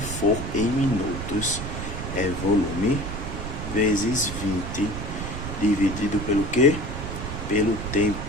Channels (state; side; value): noise; right; rumble, 6 dB below the sound